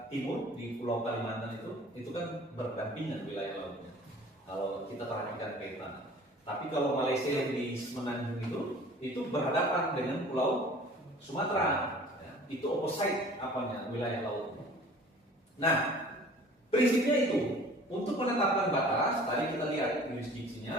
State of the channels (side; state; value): both; normal; correlation 0.47